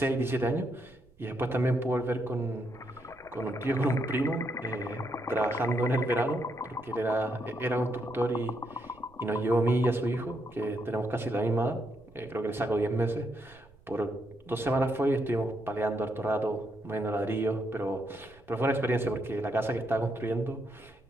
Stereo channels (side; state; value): right; noise; rumble, 27 dB below the sound